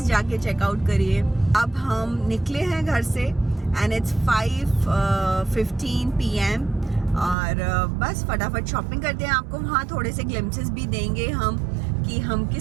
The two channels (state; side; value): drops out; left; at 7.4 s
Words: जाके चेकआउट करिए। अब हम निकले हैं घर से एंड इट्स 5:15 PM और बस फटाफट शॉपिंग करते हैं। आपको वहाँ थोड़े से ग्लिम्पसेस भी देंगे हम कि हम